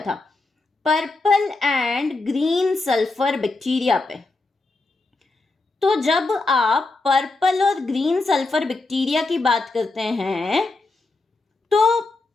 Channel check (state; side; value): quieter; right; 3.4 dB